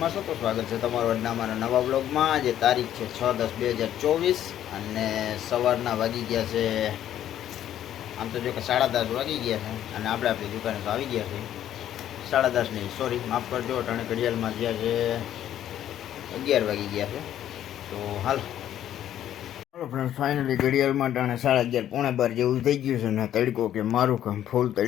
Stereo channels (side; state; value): right; quieter; 11.3 dB